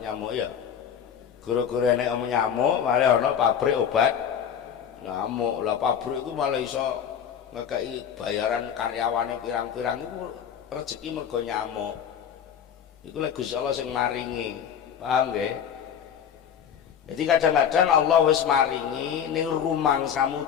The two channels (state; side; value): quieter; right; 8.3 dB